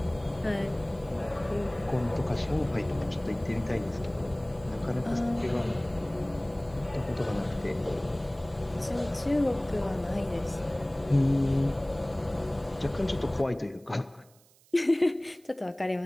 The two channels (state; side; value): noise; right; hiss, 29 dB below the sound